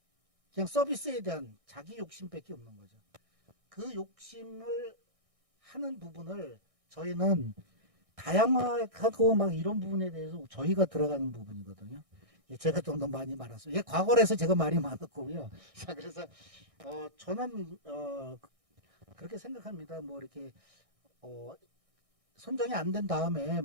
그냥 서비스에 대한 자기 욕심밖에 없는 거죠. 그 욕심을 하는 부분을 저희는 다양화하고 막 이런 부분에 대해서 저희가 들어가는 부분이거든요. 제가 좀 더 많이 말았어요. 과거에서 제가 말이 많았고요. 자, 그래서 저는 그렇게 생각합니다. 뭐 이렇게 선정이 안 된 다음에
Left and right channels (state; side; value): late; left; 1.6 ms